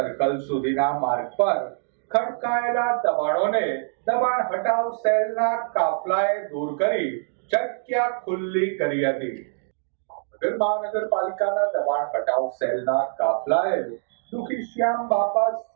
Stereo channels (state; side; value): silent; left; digital silence